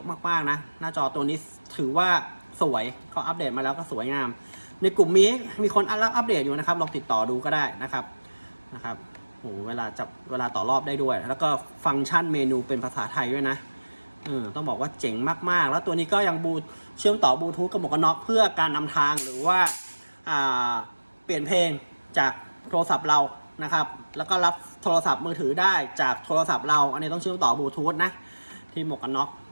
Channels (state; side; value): inverted; both; correlation -1.00